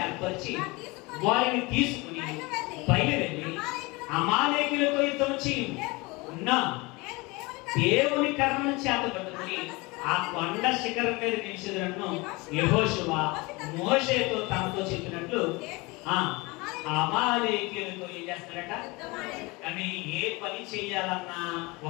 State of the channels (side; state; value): right; quieter; 24.7 dB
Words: ఏర్పరిచి వారిని తీసుకుని బయలుదేరి అమాలేకీయులతో యుద్ధం చేయున్నా దేవుని కర్రను చేత పట్టుకుని ఆ కొండ శిఖరం మీద నిలిచినట్టు యెహోషువ మోషేతో తనతో చెప్పినట్లు అమాలేకీయులతో ఏం చేస్తాడట? కానీ ఏ పని చేయాలన్నా